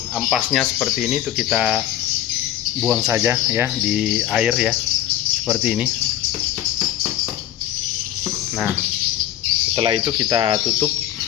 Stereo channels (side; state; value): right; quieter; 12.4 dB